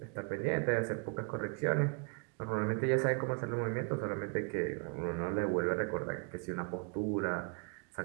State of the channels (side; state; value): left; quieter; 35.5 dB